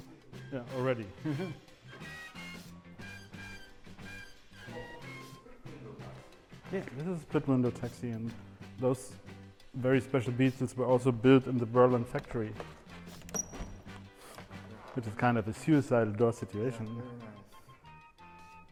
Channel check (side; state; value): both; identical; correlation 1.00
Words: Yeah, already. Yeah, this is a split window taxi, and those very special Beetles were also built in the Berlin factory, which is kind of a suicidal door situation. Yeah, very nice.